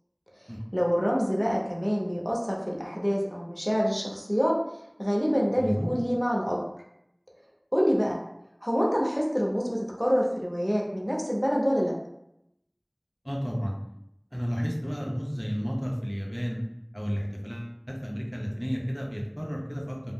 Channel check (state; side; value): identical; both; correlation 1.00